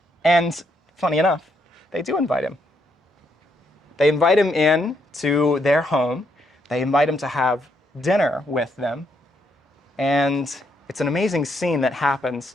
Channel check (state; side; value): normal; both; correlation 0.76